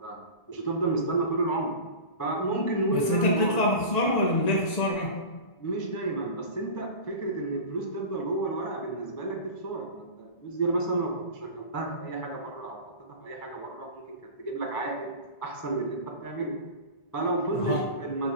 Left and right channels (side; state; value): right; late; 1.9 ms